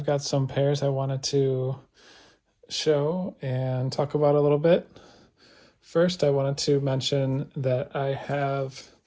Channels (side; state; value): both; identical; correlation 1.00